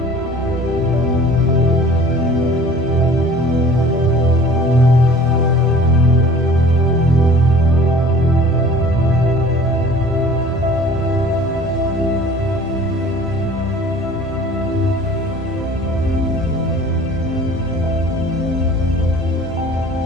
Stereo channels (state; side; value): normal; both; correlation 0.47